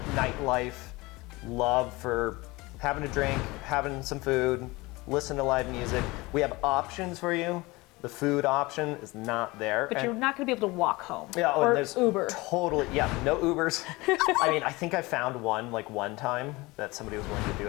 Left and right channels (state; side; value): quieter; right; 22.4 dB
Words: nightlife love for having a drink, having some food, listen to live music. We have options for you, The food option is not there. But you're not going to be able to walk home. Yeah, or and there's Uber. Totally, yeah, no Ubers. I mean, I think I found one time that somebody was willing to do